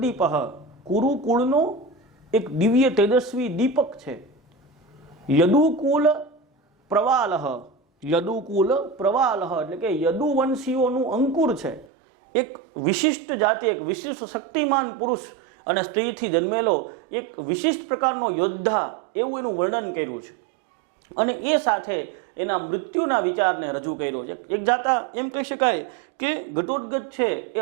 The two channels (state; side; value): drops out; left; at 11.9 s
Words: કુરુકુળનો એક દિવ્ય તેજસ્વી દીપક છે. યદુકુલ પ્રવાલ, યદુકુલ પ્રવાલ એટલે કે યદુવંશીઓનું અંકુર છે. એક વિશિષ્ટ જાતિ, એક વિશિષ્ટ શક્તિમાન પુરુષ અને સ્ત્રીથી જન્મેલો એક વિશિષ્ટ પ્રકારનો યોદ્ધા, એવું એનું વર્ણન કર્યું છે. અને એ સાથે એના મૃત્યુના વિચારને રજૂ કર્યો છે. એક જાતા એમ કહી શકાય કે ઘટોત્કચ છે એ